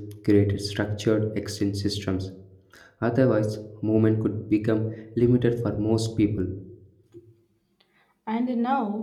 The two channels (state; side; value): identical; both; correlation 1.00